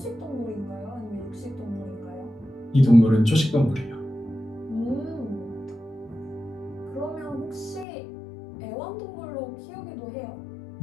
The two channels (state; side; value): drops out; right; at 7.9 s